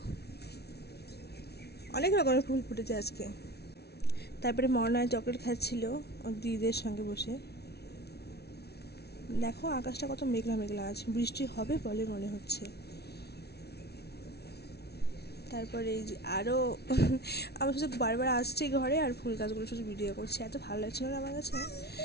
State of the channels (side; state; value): right; late; 0.48 ms